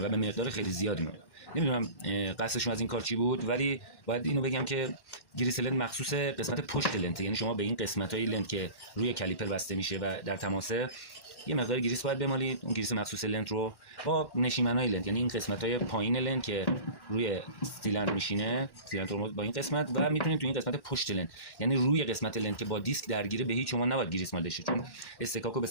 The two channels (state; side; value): late; right; 1.1 ms